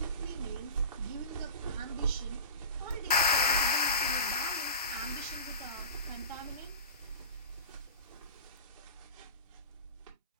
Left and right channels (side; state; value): both; inverted; correlation -0.33